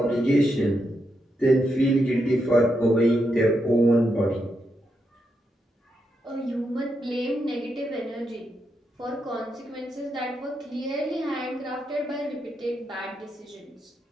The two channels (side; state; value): both; normal; correlation 0.83